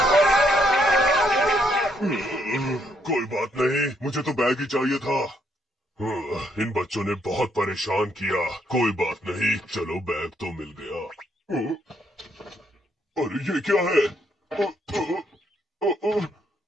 कोई बात नहीं, मुझे तो बैग ही चाहिए था। इन बच्चों ने बहुत परेशान किया। कोई बात नहीं, चलो बैग तो मिल गया। अरे ये क्या है?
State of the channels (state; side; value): normal; both; correlation 0.73